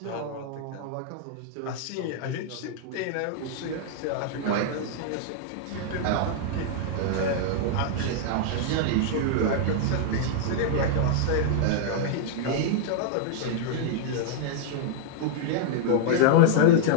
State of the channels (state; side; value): different; both; correlation -0.01